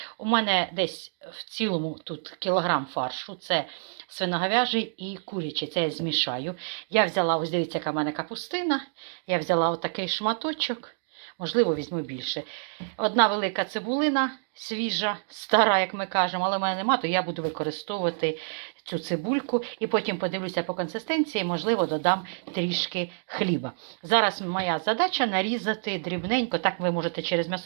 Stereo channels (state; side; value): silent; left; digital silence